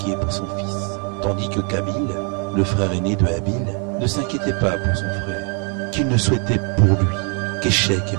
pour son fils, tandis que Kabil, le frère aîné de Abil, ne s'inquiétait pas pour son frère, qu'il ne souhaitait pour lui qu'échec et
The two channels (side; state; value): left; quieter; 38.7 dB